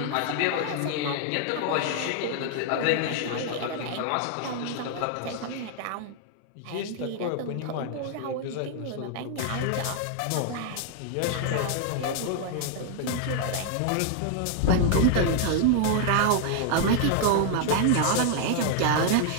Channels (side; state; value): both; different; correlation 0.00